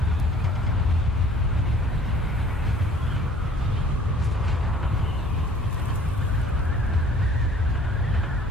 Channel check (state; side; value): normal; both; correlation 0.54